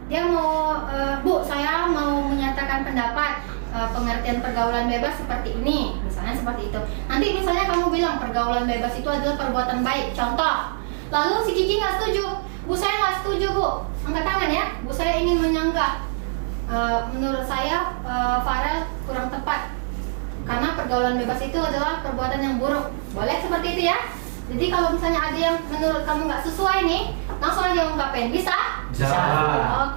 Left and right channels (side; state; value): left; silent; digital silence